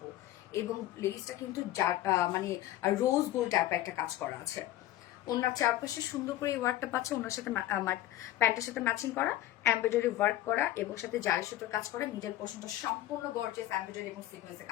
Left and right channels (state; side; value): quieter; right; 14.4 dB